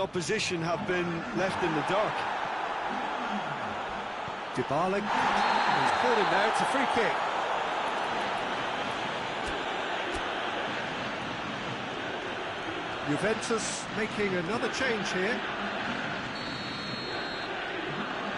have been left in the dark. Dybala, he's caught him there, it's a free kick. Juventus making another change here.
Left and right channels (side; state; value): both; identical; correlation 1.00